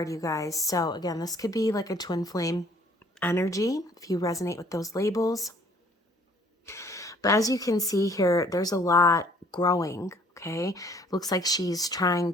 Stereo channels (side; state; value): both; normal; correlation 0.58